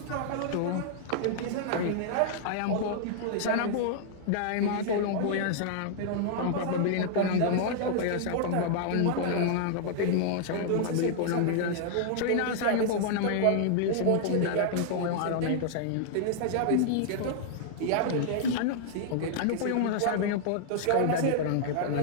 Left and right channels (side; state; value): both; different; correlation -0.01